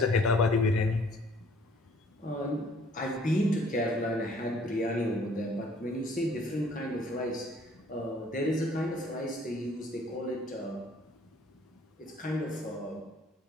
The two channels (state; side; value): normal; both; correlation 0.58